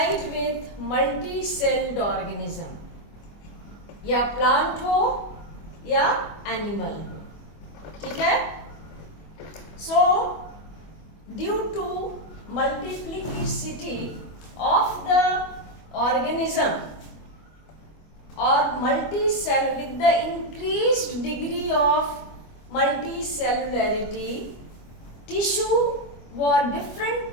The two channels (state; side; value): late; right; 25 ms